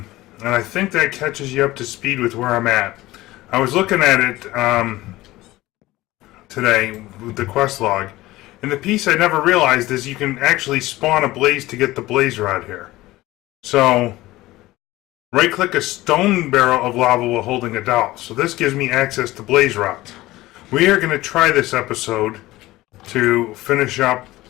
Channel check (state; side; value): quieter; right; 17.9 dB